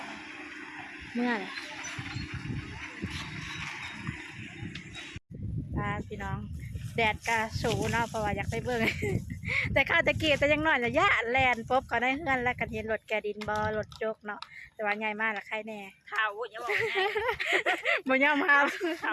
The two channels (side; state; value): both; identical; correlation 1.00